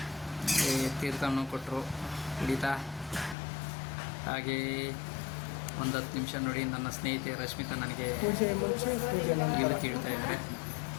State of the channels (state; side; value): drops out; right; at 3.4 s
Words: ತೀರ್ಥವನ್ನು ಕೊಟ್ಟರು ಕುಡಿತಾ. ಹಾಗೆ ಒಂದು 10 ನಿಮಿಷ ನೋಡಿ, ನನ್ನ ಸ್ನೇಹಿತೆ ರಶ್ಮಿತಾ ನನಗೆ ಇವತ್ತು ಇಡ್ತಾ ಇದ್ದಾರೆ.